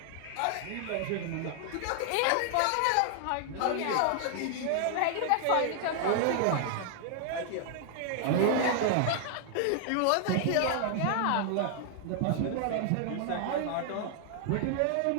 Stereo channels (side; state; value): both; different; correlation 0.00